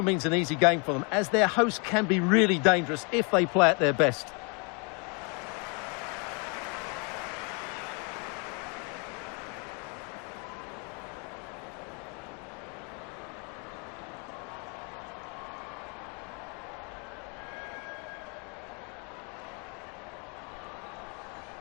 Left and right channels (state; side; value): quieter; right; 34.7 dB